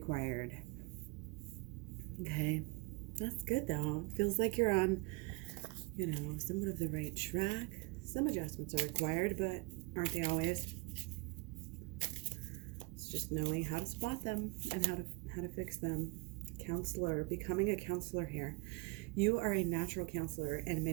Okay, that's good though. Feels like you're on, somewhat of the right track. Some adjustments are required, but aren't they always? It's just knowing how to spot them and how to fix them. Counselor, becoming a counselor here. You are a natural counselor, and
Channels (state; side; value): quieter; left; 28.1 dB